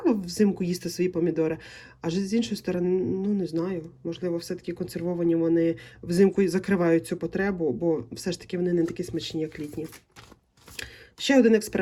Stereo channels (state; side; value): identical; both; correlation 1.00